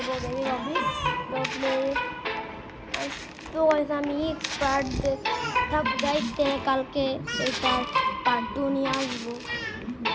বেবি ববি তো প্লে। তো গাইস আমি এক্সপার্ট থাক গাইস, কালকে এটার পার্ট 2 নিয়ে আসবো।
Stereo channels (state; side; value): identical; both; correlation 1.00